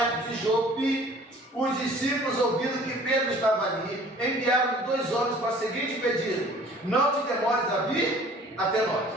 de Jope, os discípulos, ouvindo que Pedro estava ali, enviaram 2 homens para o seguinte pedido: não te demores a vir até nós.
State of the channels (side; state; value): both; normal; correlation 0.50